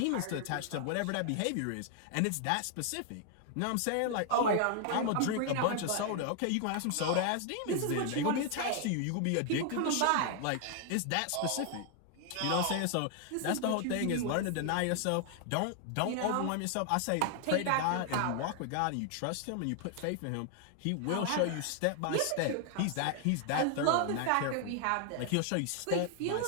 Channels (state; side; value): different; both; correlation 0.00